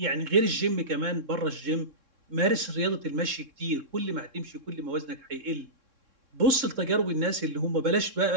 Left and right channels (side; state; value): left; late; 3.6 ms